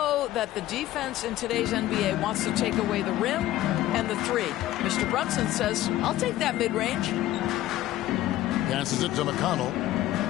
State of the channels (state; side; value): quieter; right; 14.6 dB